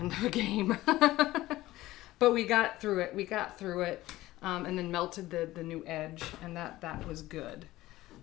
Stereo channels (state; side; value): quieter; right; 16.8 dB